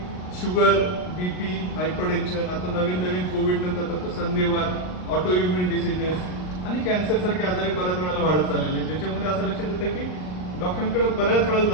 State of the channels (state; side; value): late; right; 39 ms